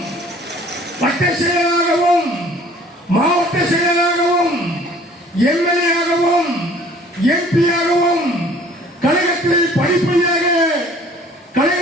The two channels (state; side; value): normal; both; correlation 0.53